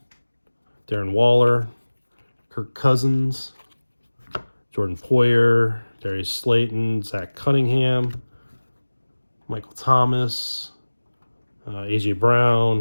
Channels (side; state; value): both; inverted; correlation -1.00